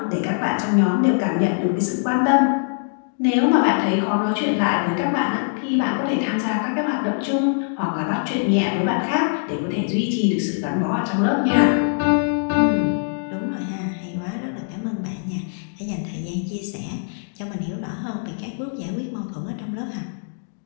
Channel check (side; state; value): right; silent; digital silence